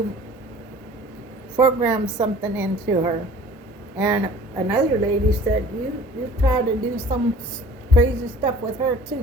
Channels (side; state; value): both; normal; correlation 0.48